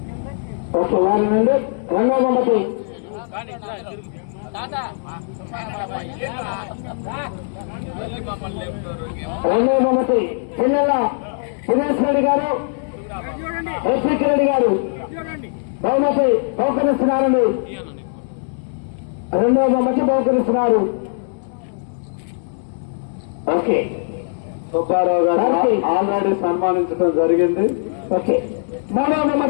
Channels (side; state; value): right; silent; digital silence